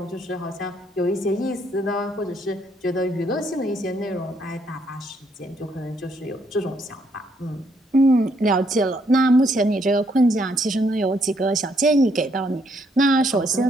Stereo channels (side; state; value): both; normal; correlation 0.71